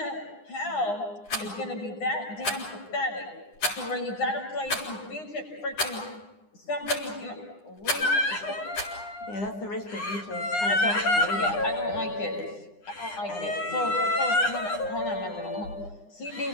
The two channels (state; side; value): late; right; 9.8 ms